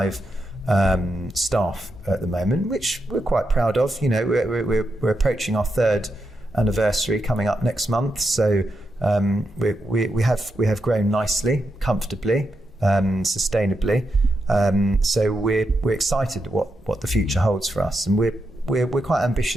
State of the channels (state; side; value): normal; both; correlation 0.85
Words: staff at the moment, which we're quite proud of. We're approaching our 3rd anniversary coming up next month, so we have grown nicely, comfortably, sustainably. So we're excited what the future holds for us, and we're quite